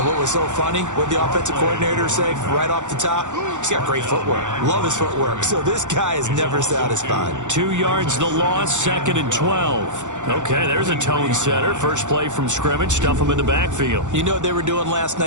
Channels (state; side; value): late; left; 0.85 ms